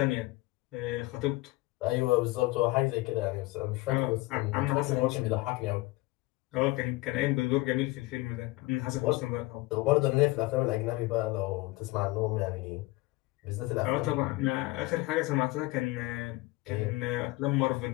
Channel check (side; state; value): right; quieter; 21.4 dB